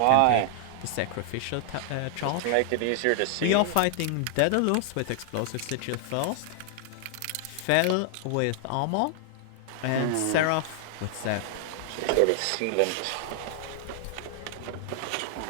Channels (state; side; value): different; both; correlation 0.00